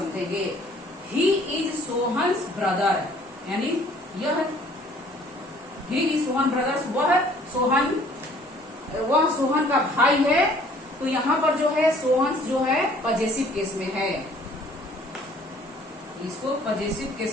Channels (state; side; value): normal; both; correlation 0.56